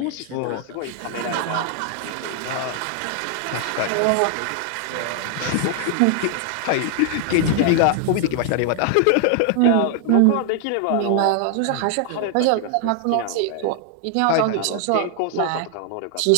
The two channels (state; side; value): different; both; correlation 0.00